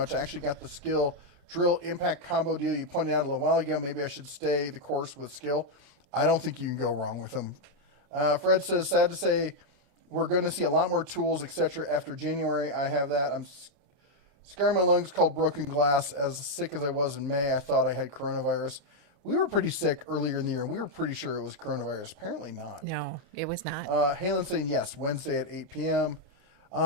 I actually got the skill drill impact combo deal you pointed out a little while ago. Maybe I should stay the course with skill. I don't think you can go wrong with them. Fred says, sad to say, we're going to see a lot more tools, etc. after January. I have that. I'm scarring my lungs called broken glass. As sick as I was in May, I thought I had coronavirus. We were pretty sick earlier in the year, and we were pretty sure it was coronavirus. Apparently not. No, it was not. Halen saying yes, Wednesday at 8 p.m.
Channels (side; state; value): left; late; 31 ms